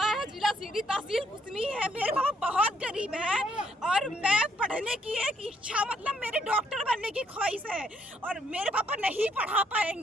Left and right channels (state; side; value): normal; both; correlation 0.70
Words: है, जिला सीधी, तहसील कुसमी है। मेरे पापा बहुत गरीब है और मैं पढ़ने की एक इच्छा मतलब मेरे डॉक्टर बनने की ख्वाहिश है और मेरे पापा नहीं पढ़ा